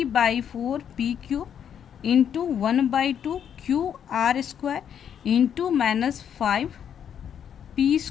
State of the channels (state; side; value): quieter; right; 8.7 dB